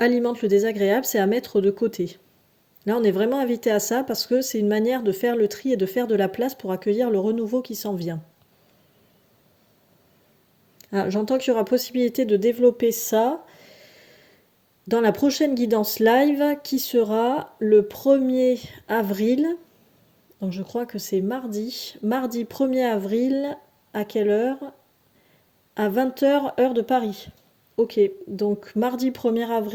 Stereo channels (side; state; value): both; identical; correlation 1.00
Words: le désagréable, c'est à mettre de côté. Là, on est vraiment invité à ça parce que c'est une manière de faire le tri et de faire de la place pour accueillir le renouveau qui s'en vient. Ah, j'entends qu'il y aura possibilité de développer ça dans la prochaine guidance live qui sera le 1er avril. Donc je crois que c'est mardi. Mardi 1er avril, à quelle heure? À 20h, heure de Paris. Ok, donc mardi 1er